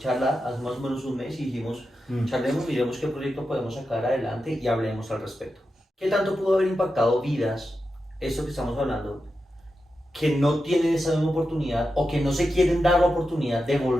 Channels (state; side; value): normal; both; correlation 0.89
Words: hace más o menos un mes, y dijimos, charlemos, miremos qué proyecto podemos sacar adelante y hablemos al respecto. ¿Qué tanto pudo haber impactado vidas, esto que estamos hablando, que no tienen esa misma oportunidad o que no se quieren dar la oportunidad de